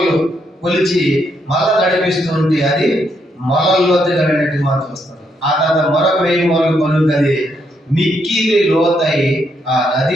కొలిచి మళ్ళా నడిపిస్తూ ఉంటే అది మొలల లోతుగా వెళ్ళినట్టు మనం చూస్తాం. ఆ తర్వాత మరొక 1000 మూరలు కొలుకు అది మిక్కిలి లోతై ఆ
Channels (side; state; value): both; normal; correlation 0.76